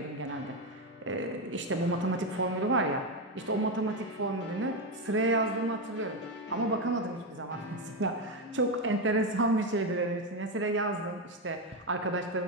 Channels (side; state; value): both; normal; correlation 0.10